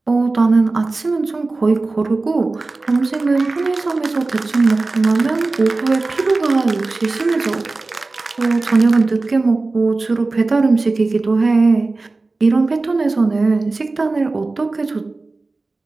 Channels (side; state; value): left; quieter; 3.5 dB